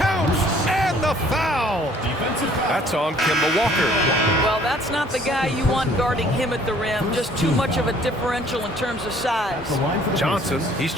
and the foul. That's on Kemba Walker. Well, that's not the guy you want guarding him at the rim. Just too much of a differential in terms of size. Johnson, he's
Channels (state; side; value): normal; both; correlation 0.58